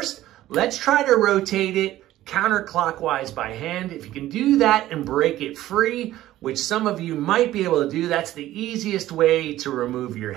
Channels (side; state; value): left; quieter; 14.6 dB